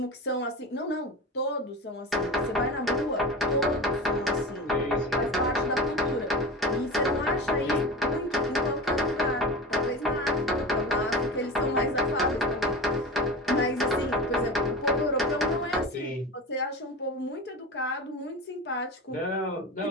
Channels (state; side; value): normal; both; correlation 0.29